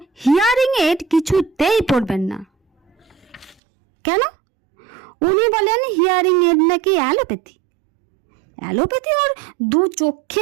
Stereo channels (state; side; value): drops out; left; at 3.6 s